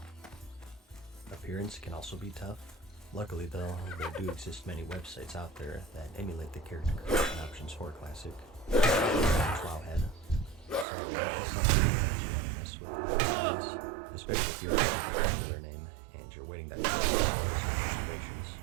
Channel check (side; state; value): left; drops out; at 10.9 s